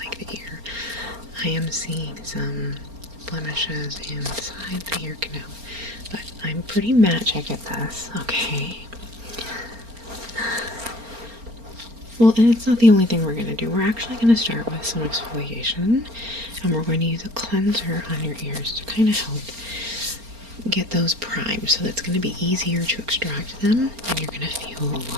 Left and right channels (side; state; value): left; late; 4.3 ms